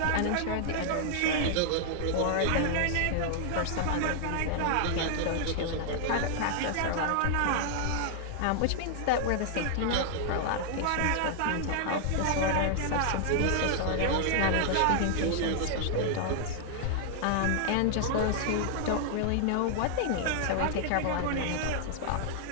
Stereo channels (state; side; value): different; both; correlation 0.00